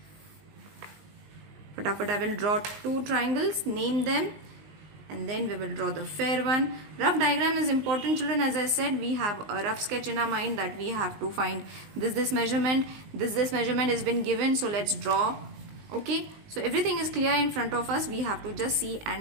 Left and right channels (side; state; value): left; late; 19 ms